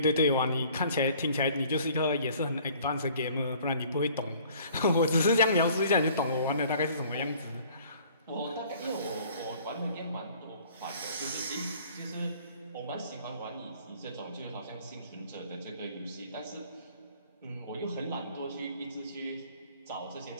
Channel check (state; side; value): inverted; both; correlation -0.54